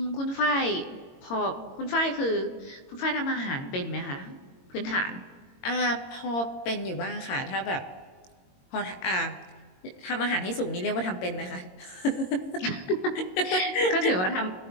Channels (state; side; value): late; right; 22 ms